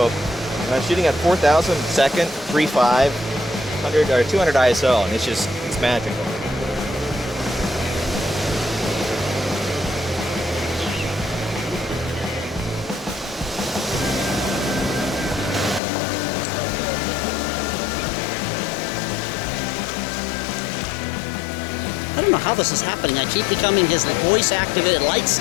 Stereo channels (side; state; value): right; drops out; at 15.8 s